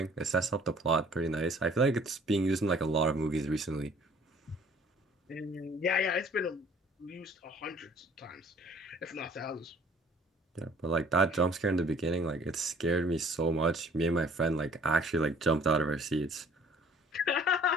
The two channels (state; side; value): normal; both; correlation 0.55